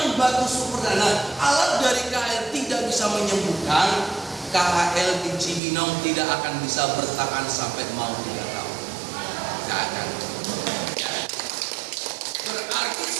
batu superdana, alat dari KHL tidak bisa menyembuhkan, KHL di Cibinong tidak akan bisa bertahan sampai mau 3 tahun. Tidak akan. Berarti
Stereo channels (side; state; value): left; drops out; at 5.6 s